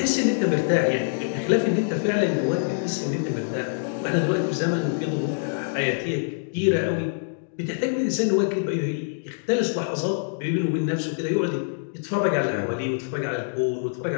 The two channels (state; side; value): silent; right; digital silence